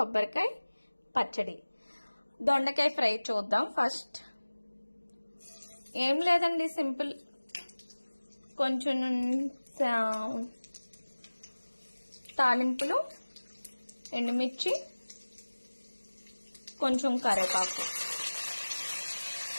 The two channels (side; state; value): both; inverted; correlation -1.00